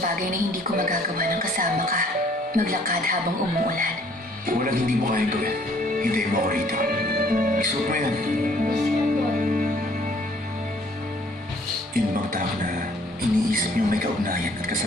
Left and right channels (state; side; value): normal; both; correlation 0.59